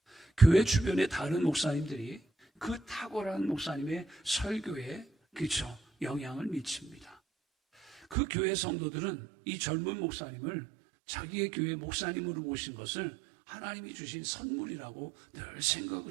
교회 주변의 다른 목사님들이 그 탁월한 목사님의 설교에, 그렇죠, 영향을 미칩니다. 그 교회 성도들은 이 젊은 목사님을 자기의 교회 목사님으로 모신 것을 하나님이 주신 선물이라고 늘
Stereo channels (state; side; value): drops out; left; at 8.2 s